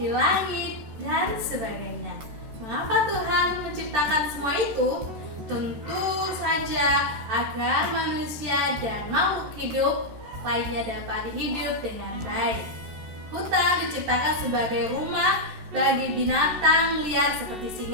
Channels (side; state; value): left; late; 13 ms